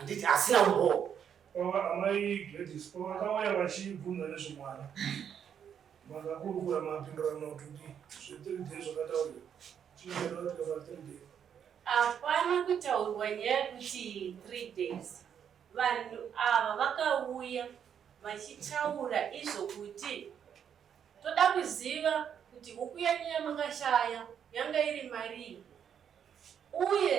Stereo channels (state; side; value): quieter; left; 8.3 dB